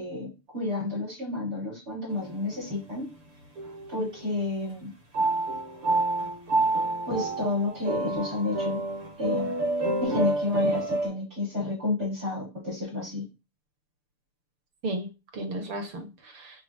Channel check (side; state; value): left; late; 6.8 ms